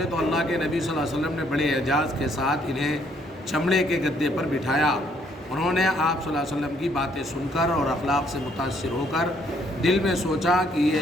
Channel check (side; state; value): both; normal; correlation 0.68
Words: تو اللہ کے نبی صلی اللہ علیہ وسلم نے بڑے اعجاز کے ساتھ انہیں چمڑے کے گدے پر بٹھایا۔ انہوں نے آپ صلی اللہ علیہ وسلم کی باتیں سن کر اور اخلاق سے متاثر ہو کر دل میں سوچا کہ